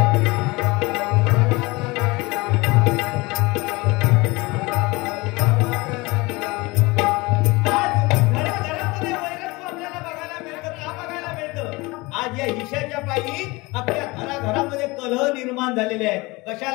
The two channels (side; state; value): right; quieter; 23.6 dB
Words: आज या हिशाच्या पायी आपल्या घराघरामध्ये कलह निर्माण झालेले आहेत.